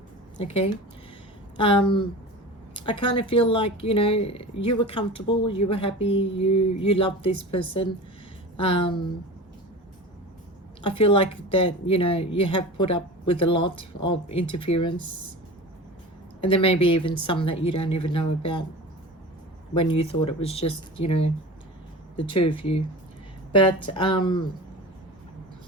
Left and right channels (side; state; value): both; normal; correlation 0.33